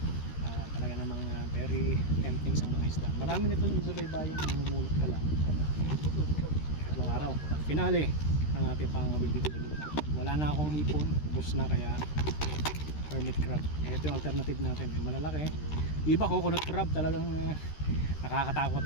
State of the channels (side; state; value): right; late; 13 ms